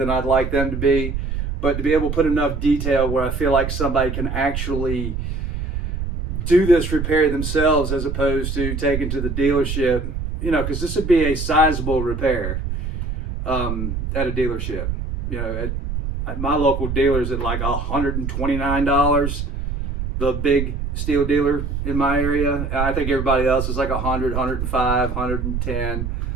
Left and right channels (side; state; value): right; noise; rumble, 4 dB below the sound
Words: I'd like them to be. But to be able to put enough detail where I feel like somebody can actually do this repair themselves as opposed to taking to the dealership, you know, because this would be a sizable repair at a dealership. You know, at my local dealer's at like $129, the big steel dealer in my area. And I think everybody else is like 100, 105, 110.